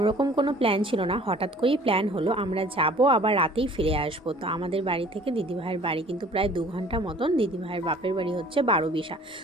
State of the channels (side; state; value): both; normal; correlation 0.50